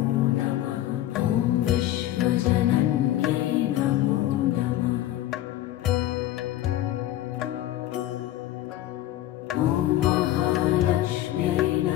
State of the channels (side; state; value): right; quieter; 13.9 dB